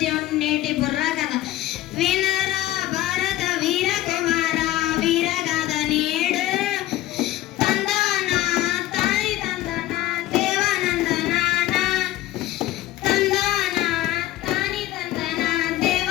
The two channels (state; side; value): quieter; right; 14.9 dB